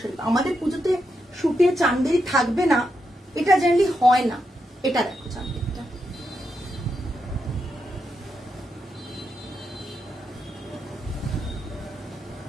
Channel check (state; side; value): normal; both; correlation 0.84